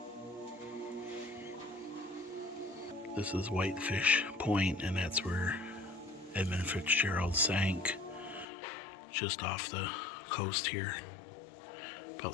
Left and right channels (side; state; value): right; drops out; at 8.5 s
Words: This is Whitefish Point, and that's where Edmund Fitzgerald sank, just off the coast here, about